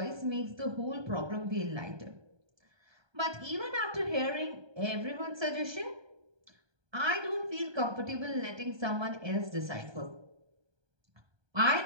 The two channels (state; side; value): late; left; 1.2 ms